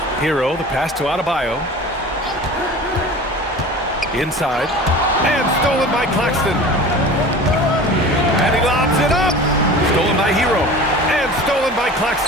HERRO, the pass to Adebayo. Inside. And stolen by Claxton. And he lobs it up. Stolen by HERRO. And stolen by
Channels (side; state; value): both; normal; correlation 0.38